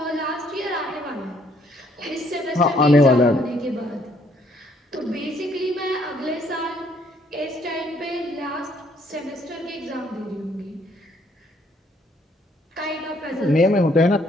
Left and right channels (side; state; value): both; normal; correlation 0.67